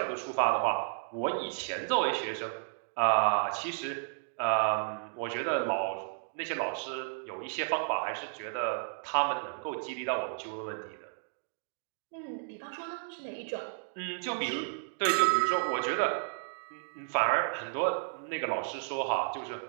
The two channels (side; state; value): left; silent; digital silence